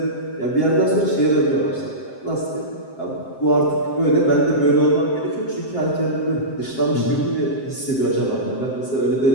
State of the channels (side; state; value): right; late; 7.6 ms